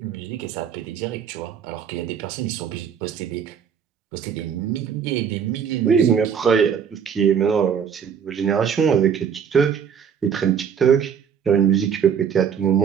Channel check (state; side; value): quieter; left; 7.5 dB